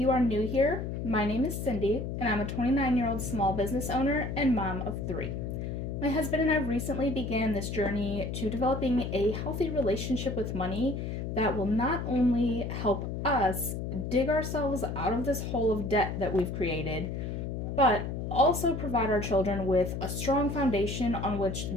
are new here, my name is Cindee and I'm a 29-year-old small business owner and mom of 3. My husband and I recently began this journey to developing a healthy relationship with money that will not only help us dig ourselves out of this hole of debt that we've created, but also provide our children with a strong foundation on which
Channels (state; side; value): noise; left; hum, 4 dB below the sound